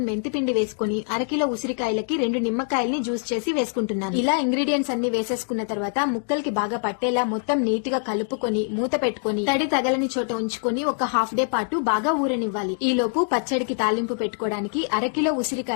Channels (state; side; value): silent; right; 60 dB below the other